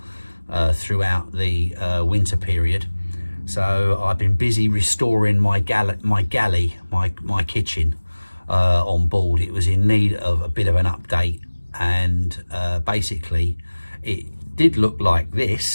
throughout the winter period. So I've been busy restoring my galley, my kitchen on board. It was in need of a bit of an update, and basically it did look like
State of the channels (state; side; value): inverted; both; correlation -1.00